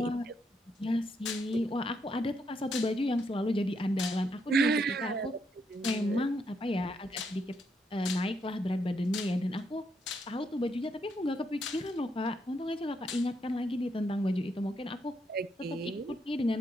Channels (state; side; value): normal; both; correlation 0.77